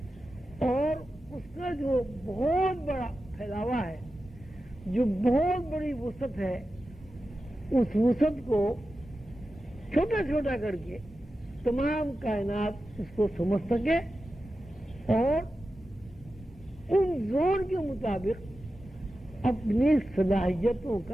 اور اس کا جو بہت بڑا پھیلاوا ہے، جو بہت بڑی وسعت ہے، اس وسعت کو چھوٹا چھوٹا کر کے تمام کائنات اس کو سمجھ سکے اور ان زون کے مطابق اپنی صلاحیتوں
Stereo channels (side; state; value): both; normal; correlation 0.92